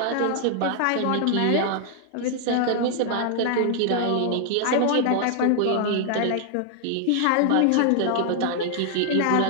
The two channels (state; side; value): different; both; correlation 0.00